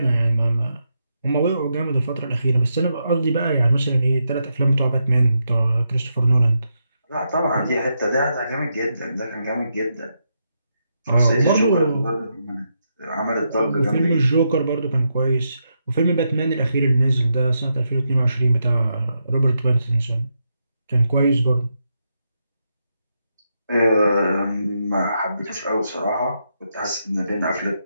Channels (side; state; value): both; inverted; correlation -0.82